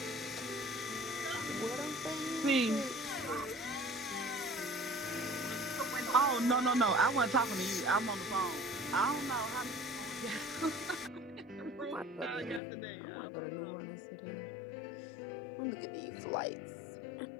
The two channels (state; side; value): drops out; right; at 12.6 s